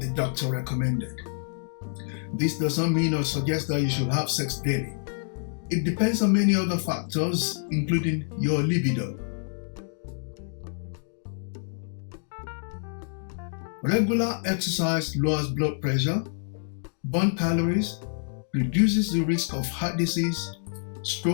doctor recommended. This does not mean or suggest that you should have sex daily. It depends on many other factors, including your libido. Regular exercise lowers blood pressure, burns calories, reduces the risk of heart disease,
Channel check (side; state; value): right; silent; digital silence